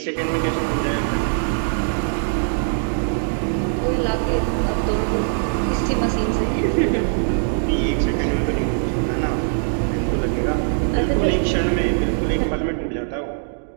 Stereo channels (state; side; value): silent; left; digital silence